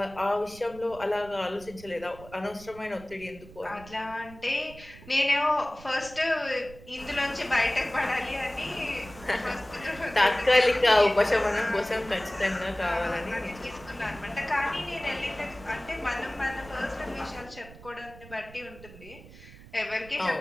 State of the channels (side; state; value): right; noise; rumble, 19 dB below the sound